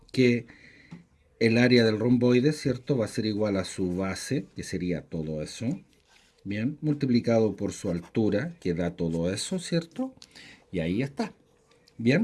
que el área del romboide, ¿cierto? Va a ser igual a su base, que sería todo eso, bien, multiplicado por su altura, que da todo eso, ¿cierto? Y ahí está,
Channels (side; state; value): both; identical; correlation 1.00